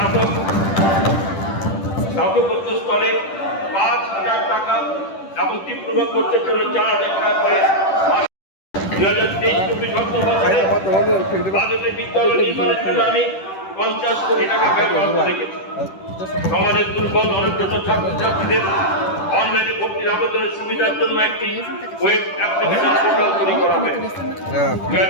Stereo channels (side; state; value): right; late; 10 ms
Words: স্নাতকোত্তর স্তরে 5,000 টাকা এবং ডিপ্লোমা কোর্সের জন্য 4,000 টাকা করে 2023-24 অর্থ বছরে বাজেটে বিদ্যালয় নির্মাণের জন্য আমি 50 কোটি টাকা ব্যয় বরাদ্দ রেখেছি। সমাজের দুর্বল অনগ্রসর ছাত্রছাত্রীদের অনলাইনে ভর্তির আবেদনের সুবিধার জন্য একটি ওয়েব অ্যাপ্লিকেশন পোর্টাল তৈরি করা হবে।